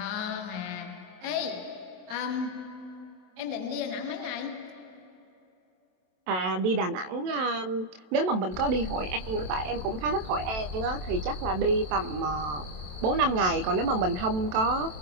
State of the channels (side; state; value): left; late; 27 ms